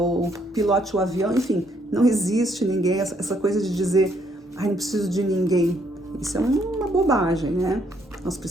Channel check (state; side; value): normal; both; correlation 0.70